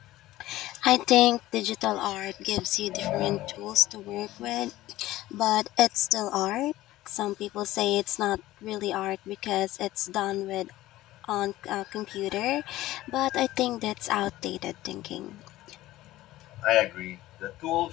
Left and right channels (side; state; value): right; quieter; 16.1 dB